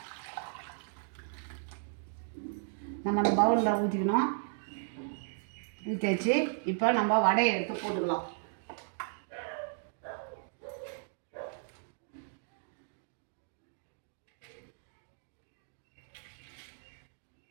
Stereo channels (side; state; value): left; silent; digital silence